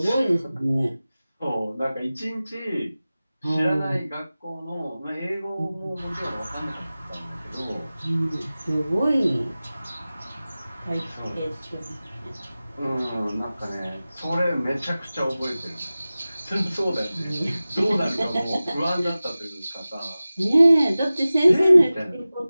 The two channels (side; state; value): both; inverted; correlation -0.97